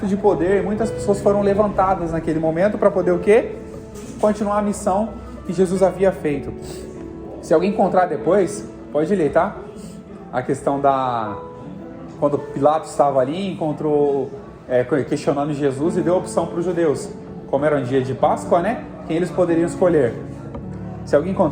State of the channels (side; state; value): both; identical; correlation 1.00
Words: de poder, muitas pessoas foram levantadas naquele momento para poder o quê? Continuar a missão que Jesus havia feito. Se alguém encontrar depois, pode ler, tá? A questão quando Pilatos estava ali, encontrou, questionando Jesus e deu opção para os judeus. Como era um dia de Páscoa, né? Quem eles poderiam escolher. Se alguém